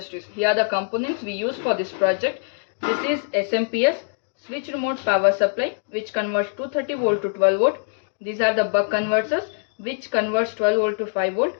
Here are the components we use for this project. This is SMPS, switch remote power supply, which converts 230 volt to 12 volt. These are the buck converters, which converts 12 volt to 5 volt.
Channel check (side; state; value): right; silent; digital silence